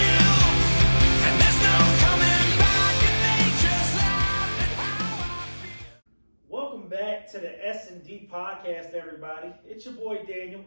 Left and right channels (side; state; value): both; inverted; correlation -1.00